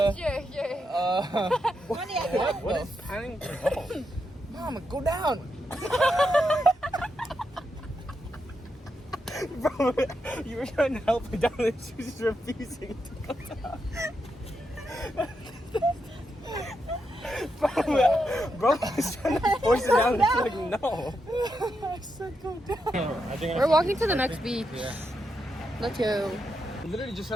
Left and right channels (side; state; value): both; normal; correlation 0.84